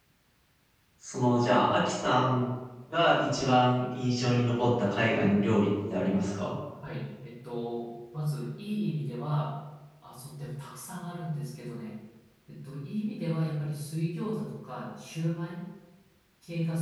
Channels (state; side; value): identical; both; correlation 1.00